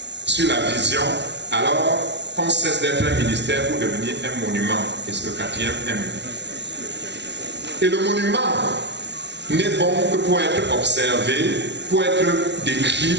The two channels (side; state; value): left; late; 0.51 ms